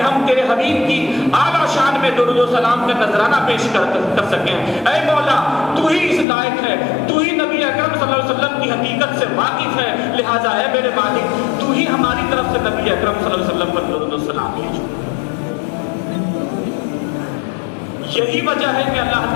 ہم تیرے حبیب کی اعلیٰ شان میں درود و سلام کا نذرانہ پیش کر سکیں۔ اے مولا، تو ہی اس لائق ہے، تو ہی نبی اکرم صلی اللہ علیہ وسلم کی حقیقت سے واقف ہے، لہذا اے میرے مالک تو ہی ہماری طرف سے نبی اکرم صلی اللہ علیہ وسلم پر درود و سلام بھیجو۔ یہی وجہ ہے کہ اللہ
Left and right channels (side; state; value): right; drops out; at 6.2 s